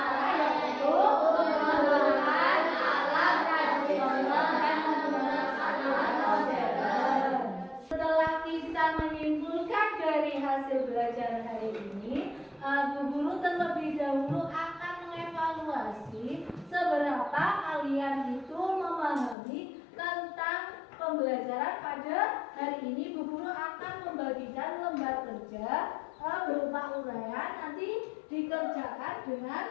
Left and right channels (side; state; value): right; drops out; at 19.4 s